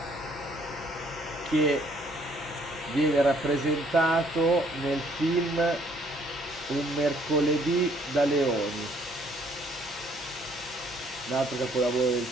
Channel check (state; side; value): normal; both; correlation 0.64